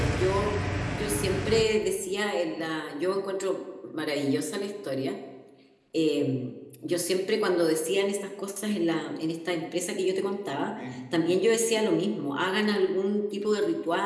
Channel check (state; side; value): identical; both; correlation 1.00